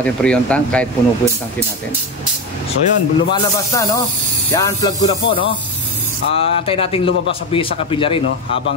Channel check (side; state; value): both; normal; correlation 0.17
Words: freon tank kahit puno po yung tankin natin. So yun, lumalabas na, no? I-unplug ko na po, no? Antayin natin lumabas sa capillary, no?